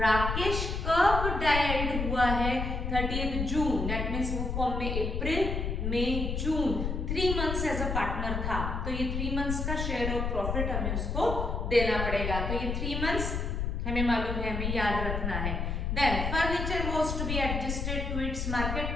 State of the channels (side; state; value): left; noise; rumble, 2 dB below the sound